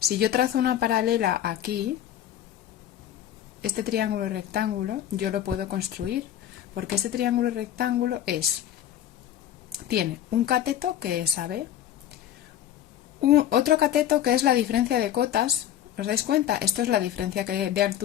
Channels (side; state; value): right; quieter; 11.0 dB